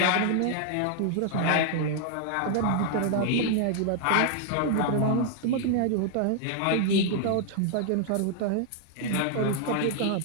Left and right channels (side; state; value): both; different; correlation 0.00